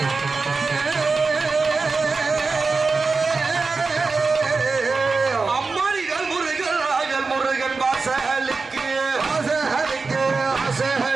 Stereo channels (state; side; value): quieter; left; 4.2 dB